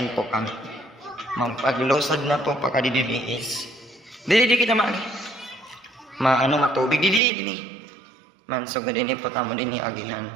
po kami. Magpaglosad na po pagkadidili is dili kita matubig dili. Man so gadini po tamo din agihan.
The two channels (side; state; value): left; drops out; at 7.2 s